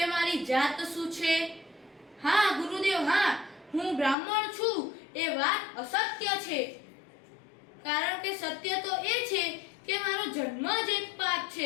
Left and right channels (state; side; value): drops out; right; at 4.2 s